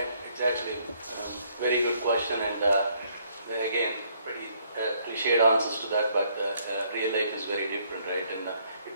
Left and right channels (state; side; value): inverted; both; correlation -0.68